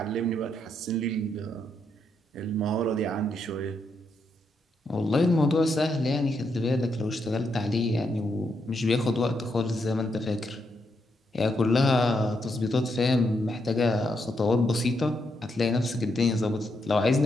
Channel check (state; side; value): normal; both; correlation 0.79